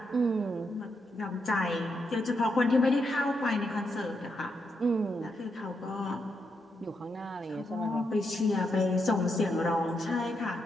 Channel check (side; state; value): both; normal; correlation 0.82